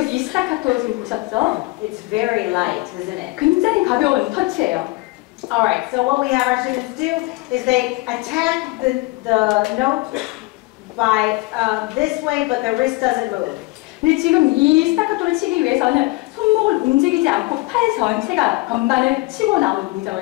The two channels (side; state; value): right; quieter; 22.4 dB